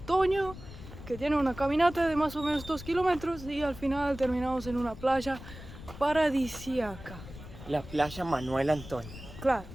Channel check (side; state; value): left; noise; rumble, 14 dB below the sound